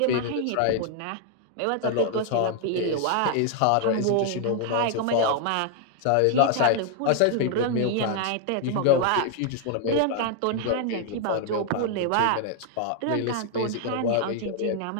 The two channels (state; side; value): different; both; correlation 0.00